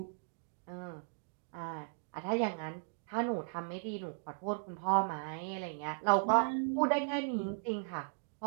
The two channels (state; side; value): silent; left; digital silence